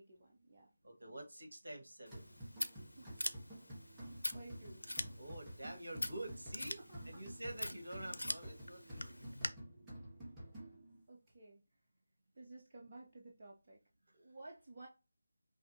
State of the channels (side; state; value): both; inverted; correlation -0.95